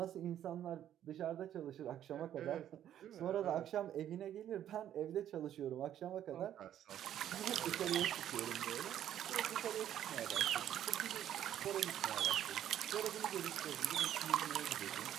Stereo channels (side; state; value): left; quieter; 10.9 dB